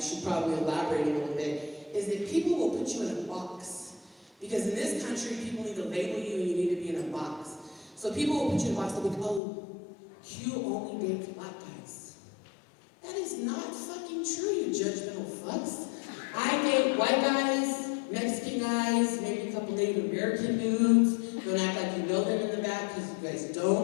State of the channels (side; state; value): right; drops out; at 9.4 s